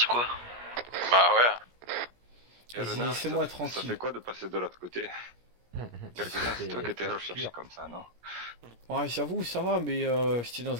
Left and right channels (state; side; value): late; left; 17 ms